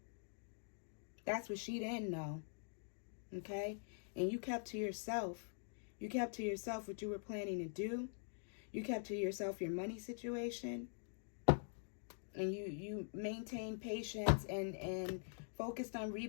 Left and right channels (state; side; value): silent; right; digital silence